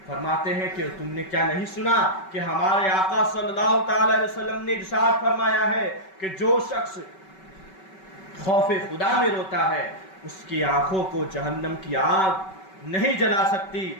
فرماتے ہیں کہ تم نے کیا نہیں سنا کہ ہمارے آقا صلی اللہ تعالی علیہ وسلم نے ارشاد فرمایا ہے کہ جو شخص خوف خدا میں روتا ہے اس کی آنکھوں کو جہنم کی آگ نہیں جلا سکتی،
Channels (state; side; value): late; right; 5.3 ms